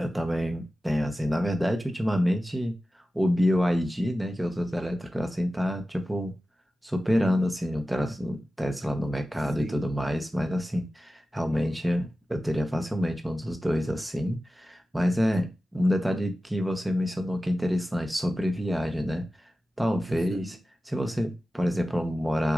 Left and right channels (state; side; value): normal; both; correlation 0.94